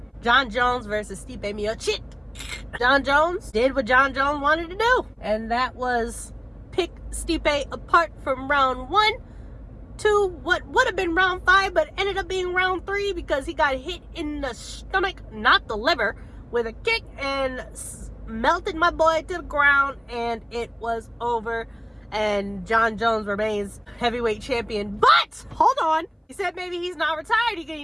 Jon Jones versus Stipe Miocic. Jon Jones did what Jon Jones wanted to do, and that was pick Stipe apart from round 1 to what would have been round 5, but ended up being round 3 because he got hit in the stomach, not the liver, with a kick and melted my boy to the ground, and it was over. And Jon Jones remains heavyweight champion. But hold on, he said maybe he's not retired. He need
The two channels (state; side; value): identical; both; correlation 1.00